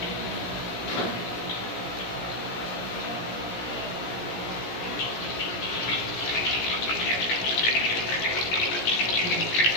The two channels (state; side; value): late; right; 17 ms